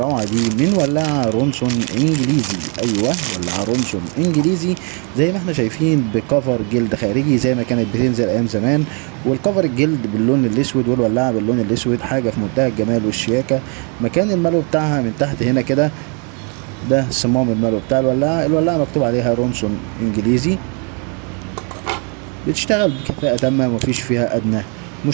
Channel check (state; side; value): quieter; left; 36.1 dB